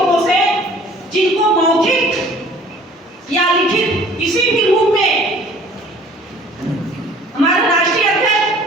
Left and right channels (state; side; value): normal; both; correlation 0.52